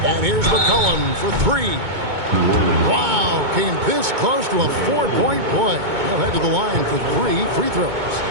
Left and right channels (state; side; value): late; left; 2.2 ms